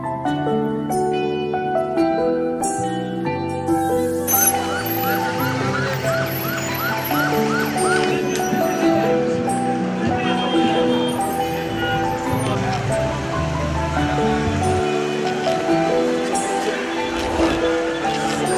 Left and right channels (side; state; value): both; identical; correlation 1.00